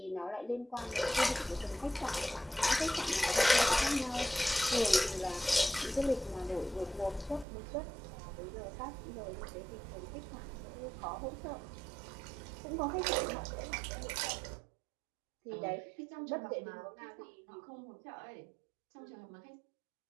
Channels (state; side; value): drops out; left; at 7.5 s